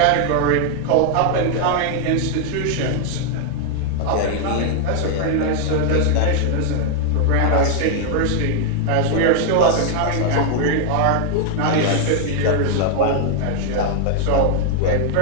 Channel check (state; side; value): different; both; correlation 0.00